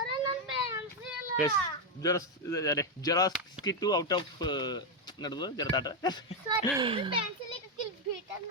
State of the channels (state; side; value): normal; both; correlation 0.04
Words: ಎಸ್ ಜೆರಾಕ್ಸ್ ಕಿಟ್ಟು ಔಟ್ ಆಫ್ ನಡೆದು ಜರತಾಟ